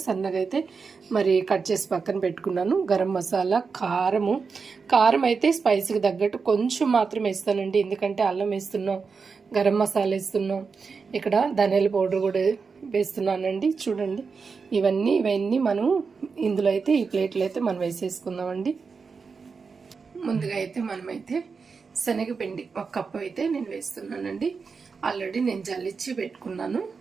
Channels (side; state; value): left; quieter; 5.1 dB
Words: సన్నగా అయితే మరి కట్ చేసి పక్కన పెట్టుకున్నాను. గరం మసాలా, కారం అయితే స్పైసీకి తగ్గట్టు కొంచెం మాత్రం వేస్తానండి. ఎందుకంటే అల్లం వేస్తున్నాం, గరం మసాలా వేస్తున్నాం, ఇక్కడ ధనియాల పౌడర్ కూడా వేస్తున్నానండి. చూడండి, ఇవన్నీ మనం ఇందులో అయితే ఈ ప్లేట్లో అయితే మనం వేసేసుకుందామండి. ముందుగా అయితే మనమైతే శనగపిండి 1 కప్పు అయితే నేను వేస్తున్నానండి. ఆల్రెడీ నేను జల్లిచ్చి పెట్టుకున్నాను.